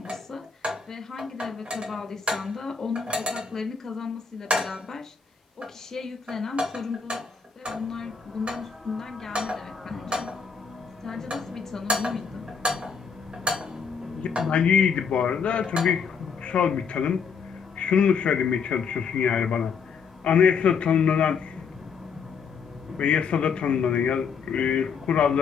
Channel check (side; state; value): right; quieter; 6.0 dB